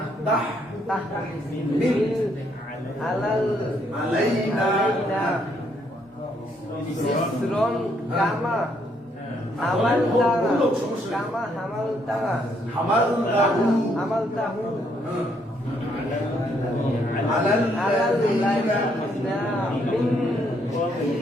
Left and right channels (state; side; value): normal; both; correlation 0.71